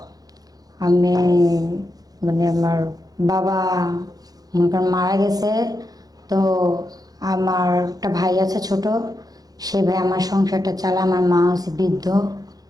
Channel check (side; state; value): left; late; 0.18 ms